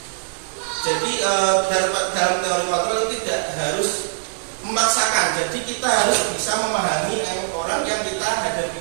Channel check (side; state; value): left; silent; digital silence